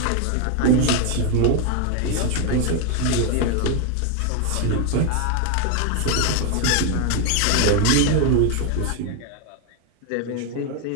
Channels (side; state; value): both; different; correlation 0.01